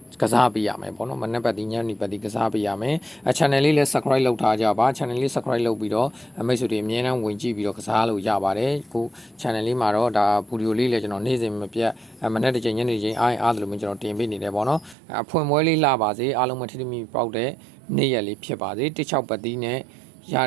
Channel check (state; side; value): drops out; left; at 15.0 s